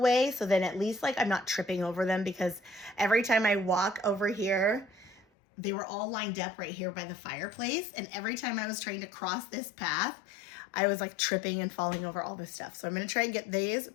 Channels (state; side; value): drops out; right; at 5.2 s